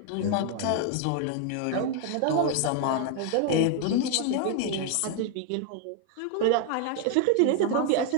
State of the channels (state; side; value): different; both; correlation 0.01